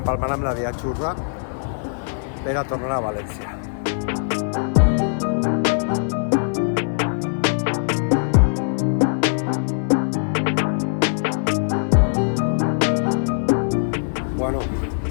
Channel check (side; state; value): right; silent; digital silence